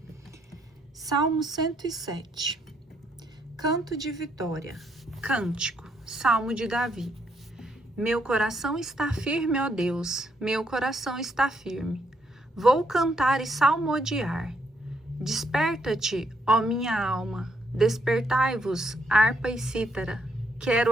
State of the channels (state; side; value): normal; both; correlation 0.74